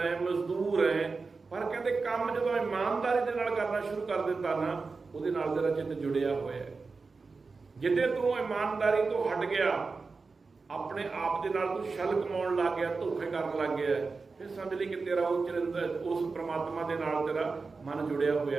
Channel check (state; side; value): quieter; left; 4.3 dB